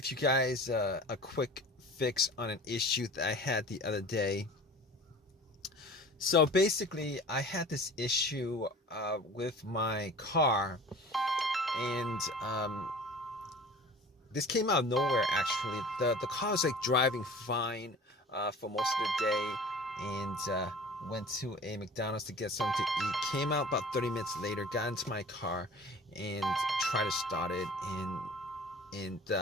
you guys a quick fix on an issue that I had the other day. So basically, I had this issue with my car, and this came out of nowhere. Actually, the car was like driving fine for most of the day, and went to a McDonald's to get something to eat. Came out about 30 minutes later, got into my car, and tried to start it, and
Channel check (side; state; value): both; normal; correlation 0.42